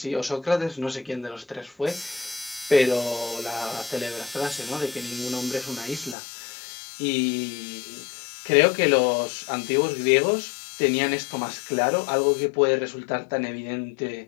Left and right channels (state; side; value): drops out; right; at 6.2 s